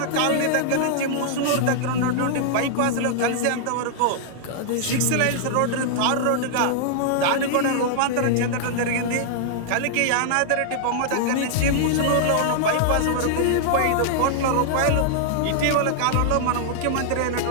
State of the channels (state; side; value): different; both; correlation -0.01